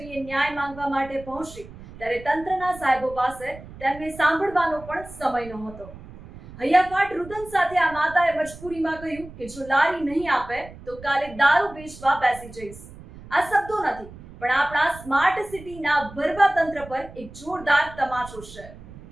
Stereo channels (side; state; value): right; noise; rumble, 17 dB below the sound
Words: ન્યાય માંગવા માટે પહોંચી ત્યારે તંત્રના સાહેબો પાસે તેમને સાંભળવાનો પણ સમય નહોતો। હૈયાફાટ રુદન સાથે આ માતાએ મજબૂરીમાં કહ્યું કે જો લારી નહીં આપે તો કાલે દારૂ વેચવા બેસી જઈશ। આ શબ્દો નથી પણ આપણા સ્માર્ટ સિટીના ભરવા તંત્ર પર એક જોરદાર તમાચો છે।